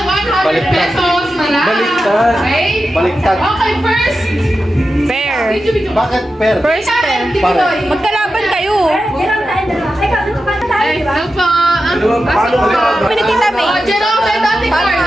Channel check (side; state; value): both; normal; correlation 0.91